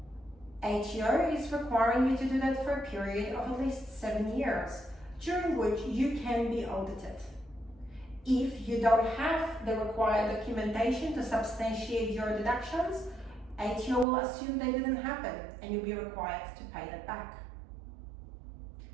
ATO is requiring you to do that for a period of at least 7 years, during which you can be audited. If you don't have the required documentation to substantiate your deductions, ATO will assume they didn't happen and you'll be required to pay that back.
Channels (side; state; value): left; drops out; at 14.1 s